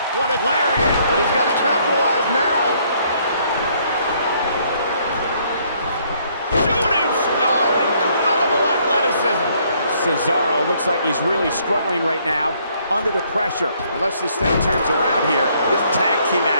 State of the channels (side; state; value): both; inverted; correlation -0.66